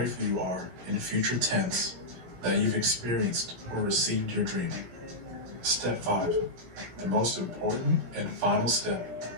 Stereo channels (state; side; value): late; left; 17 ms